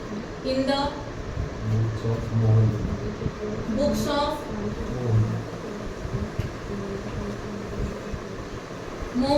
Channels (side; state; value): both; identical; correlation 1.00